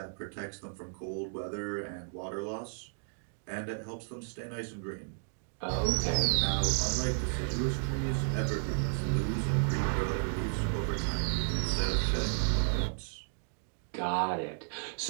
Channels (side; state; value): left; silent; digital silence